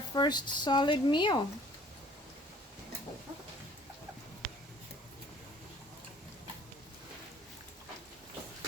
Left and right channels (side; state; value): both; normal; correlation 0.54